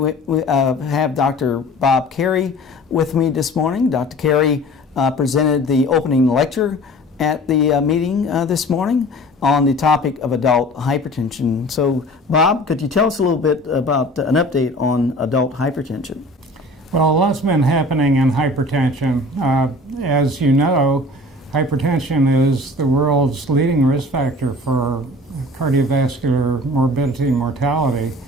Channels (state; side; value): normal; both; correlation 0.44